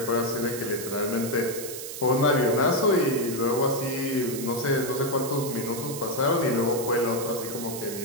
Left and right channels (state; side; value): noise; right; hiss, 9 dB below the sound